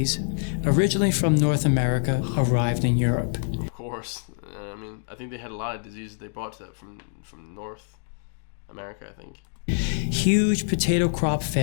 originally from North America, arrived in Europe. Of course. I mean, I think they had a lot of diseases they brought to from North America, I think. Huge potato crop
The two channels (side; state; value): right; silent; digital silence